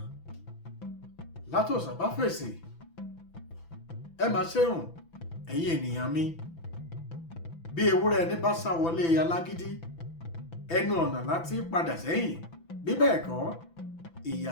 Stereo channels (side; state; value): right; late; 6.0 ms